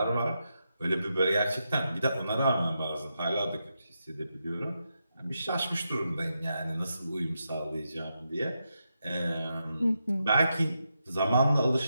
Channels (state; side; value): inverted; both; correlation -0.85